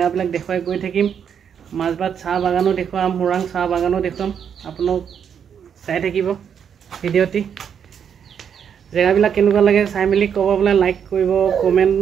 দেখুৱাই গৈ থাকিম। মাছবাট চাহ বাগানো দেখুৱাম, মোৰাং চাহ বাগানো দেখুৱাম। আপোনালোক চাই থাকিব ভিডিঅ'টি। জেগাবিলাক কেনেকুৱা লাগে চাই মেলি ক'ব, বোলে লাইক কৰিব,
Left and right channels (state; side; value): quieter; left; 7.8 dB